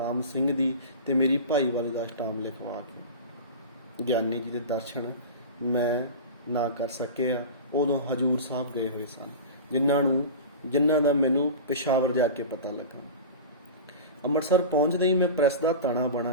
ਸਿੰਘ ਦੀ ਤੇ ਮੇਰੀ ਭਾਈਵਾਲੀ ਦਾ ਸਟਾਮ ਲਿਖਵਾ ਕੇ। ਗਿਆਨੀ ਜੀ ਦੇ ਦਰਸ਼ਨ ਮੈਂ ਨਾ ਕਰ ਸਕਿਆ। ਉਦੋਂ ਹਜੂਰ ਸਾਹਿਬ ਗਏ ਹੋਏ ਸਨ, ਜਿਨ੍ਹਾਂ ਦਾ ਮੈਨੂੰ ਪੇਸ਼ਾਵਰ ਜਾ ਕੇ ਪਤਾ ਲੱਗਾ। ਅੰਮ੍ਰਿਤਸਰ ਪਹੁੰਚਦੇ ਹੀ ਮੈਂ ਪ੍ਰੈਸ ਦਾ ਤਾਣਾ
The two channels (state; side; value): inverted; both; correlation -0.31